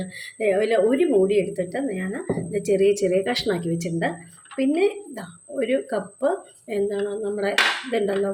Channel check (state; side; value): identical; both; correlation 1.00